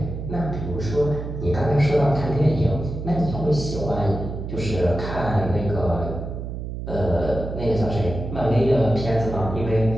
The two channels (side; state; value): right; noise; hum, 6 dB below the sound